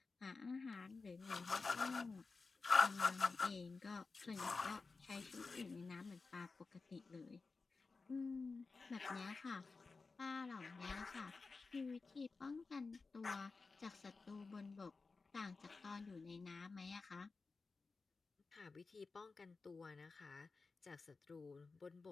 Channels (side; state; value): right; quieter; 4.2 dB